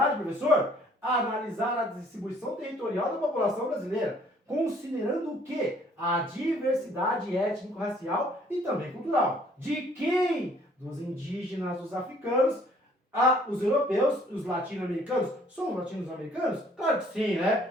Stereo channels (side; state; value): both; normal; correlation 0.60